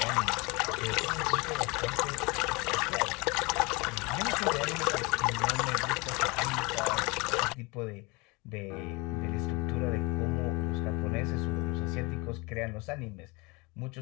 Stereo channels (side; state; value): right; quieter; 26.5 dB